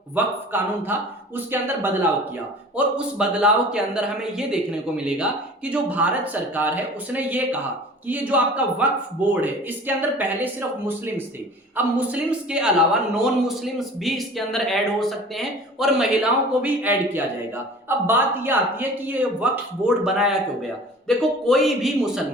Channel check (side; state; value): both; normal; correlation 0.44